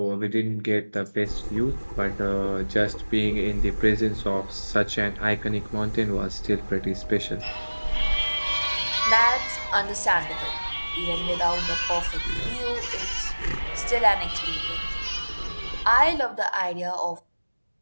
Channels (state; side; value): inverted; both; correlation -1.00